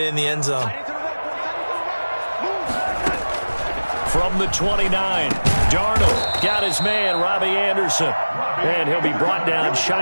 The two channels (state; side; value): inverted; both; correlation -1.00